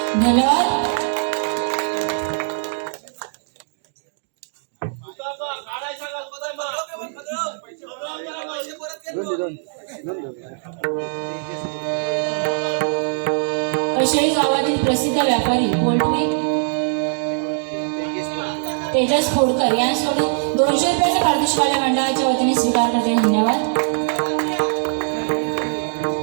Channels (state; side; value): silent; left; digital silence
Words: धन्यवाद. कशाळी गावातील प्रसिद्ध व्यापारी पोल्ट्री तेजस खोडकर यांच्याकडून 200 रुपयाचा पारितोषिक मंडळाच्या वतीने स्वीकार करते. धन्यवाद.